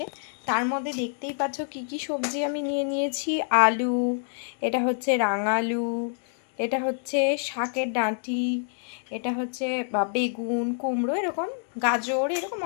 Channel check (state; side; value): silent; right; digital silence